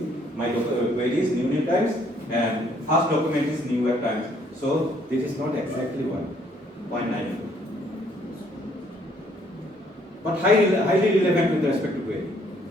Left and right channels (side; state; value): both; normal; correlation 0.65